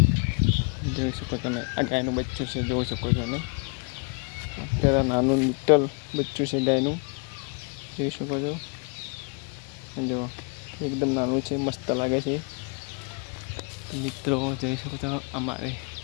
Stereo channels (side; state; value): right; quieter; 33.5 dB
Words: જોઈ શકો તમે, આ ગાયનું બચ્ચું છે, જોઈ શકો છો તમે. અત્યારે નાનું લિટલ બચ્ચું છે ગાયનું, જોઈ શકો છો. જો એકદમ નાનું છે, મસ્ત લાગે છે. મિત્રો જોઈ શકો છો, અમારે